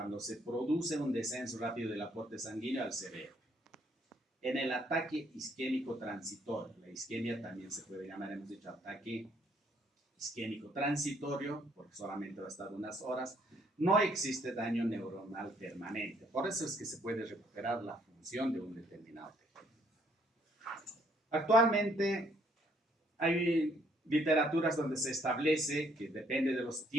se produce un descenso rápido del aporte sanguíneo al cerebro. En el ataque isquémico transitorio, la isquemia también se puede llamar, hemos dicho, ataque isquémico transitorio, porque solamente va a estar unas horas, no existe daño neuronal permanente. Por eso es que se puede recuperar la función de un determinado tejido. Actualmente hay literaturas donde se establece que depende de los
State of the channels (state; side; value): normal; both; correlation 0.67